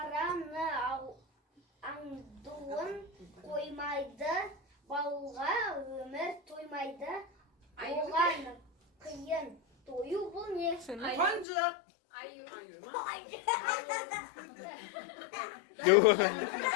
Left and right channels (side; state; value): right; drops out; at 11.5 s